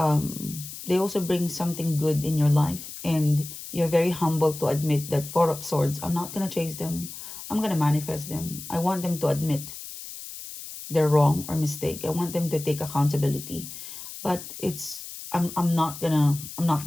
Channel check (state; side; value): noise; left; hiss, 11 dB below the sound